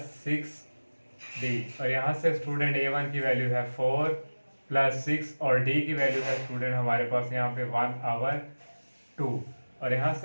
6D, और यहाँ से स्टूडेंट A1 की वैल्यू है 4 प्लस 6 और D की वैल्यू है स्टूडेंट हमारे पास यहाँ पे 1/2, और यहाँ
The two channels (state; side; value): inverted; both; correlation -1.00